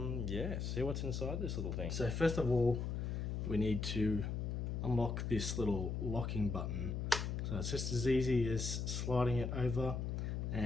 see what's inside this little thing. So first of all, we need to unlock this little locking button. So So it's just as easy as sliding it over,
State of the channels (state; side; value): noise; left; hum, 2 dB below the sound